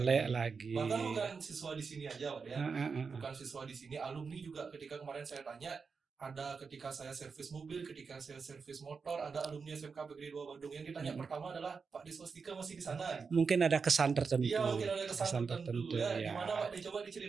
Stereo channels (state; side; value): quieter; left; 5.2 dB